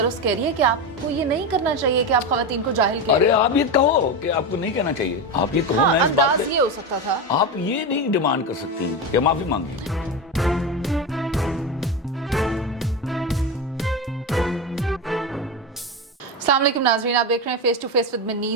کہہ رہی ہے کہ آپ کو یہ نہیں کرنا چاہیے کہ آپ خواتین کو جاہل کہیں. ارے آپ یہ کہو کہ آپ کو نہیں کہنا چاہیے, آپ یہ کہو. ہاں, انداز یہ ہو سکتا تھا. آپ یہ نہیں ڈیمانڈ کر سکتی کہ معافی مانگی. السلام علیکم ناظرین, آپ دیکھ رہے ہیں face to face with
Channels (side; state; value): both; normal; correlation 0.17